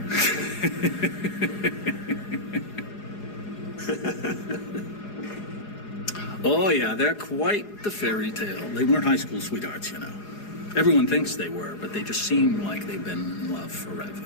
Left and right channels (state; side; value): late; right; 4.8 ms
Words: Oh, yeah, they're quite the fairy tale. They weren't high school sweethearts, you know. Everyone thinks they were, but they just seem like they've been in love